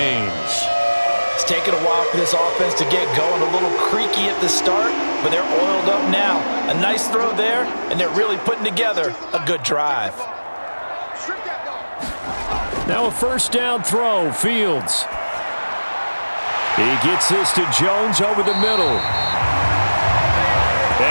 It's taken a while for this offense to get going, a little creaky at the start, but they're oiled up now. A nice throw there, and they're really putting together a good drive. Now a first down throw, Fields. He gets this to Jones over the middle.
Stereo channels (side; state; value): both; inverted; correlation -1.00